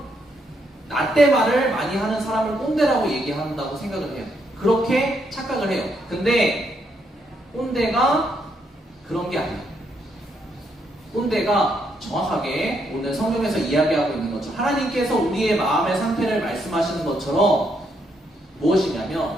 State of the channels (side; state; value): both; normal; correlation 0.76